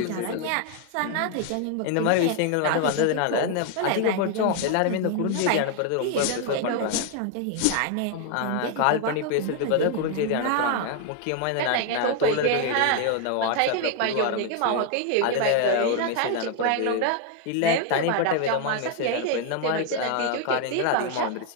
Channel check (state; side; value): different; both; correlation 0.01